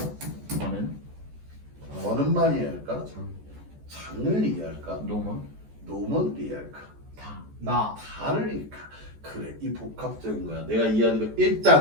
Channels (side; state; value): left; late; 14 ms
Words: 너는만 이해할까? 장을 이해할까? 노먼을 이해할까? 다를 이해할까? 그래, 이 복합적인 거야. 내가 이해하는 거.